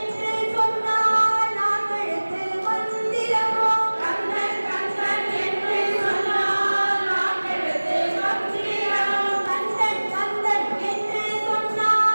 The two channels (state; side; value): inverted; both; correlation -1.00